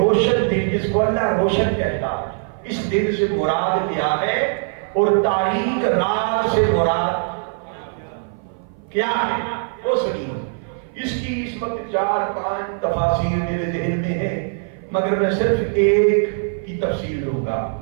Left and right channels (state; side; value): silent; left; 56 dB below the other